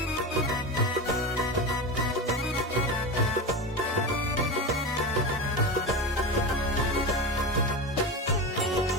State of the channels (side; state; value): both; normal; correlation 0.23